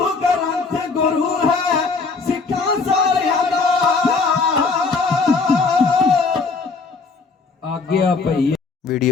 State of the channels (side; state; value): right; quieter; 4.4 dB